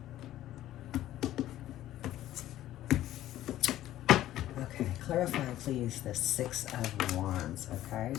Okay, clarify please the 6 of Wands, okay?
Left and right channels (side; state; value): right; quieter; 13.6 dB